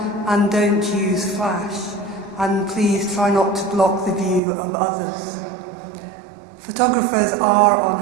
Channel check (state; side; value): drops out; left; at 4.4 s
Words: and don't use flash. And please try not to block the view of others. Photographers are on